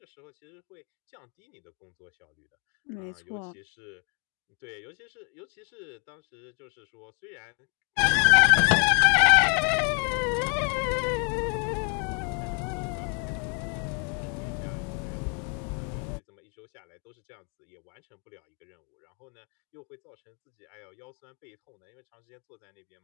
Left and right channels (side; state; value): right; quieter; 37.7 dB